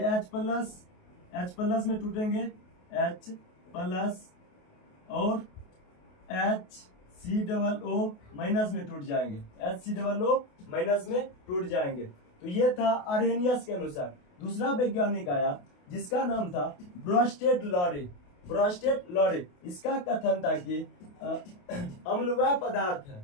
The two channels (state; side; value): late; right; 28 ms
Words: में टूटेंगे, H+ और HCOO- में टूट जाएंगे, HCOO- में टूट जाएंगे। तो ये था आर्हेनियस के अनुसार। दूसरा वैज्ञानिक आया जिसका नाम था ब्रोस्टेड लॉरी। इसका कथन था कि अम्ल